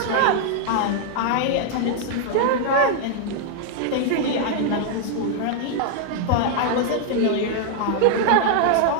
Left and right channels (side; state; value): both; different; correlation 0.00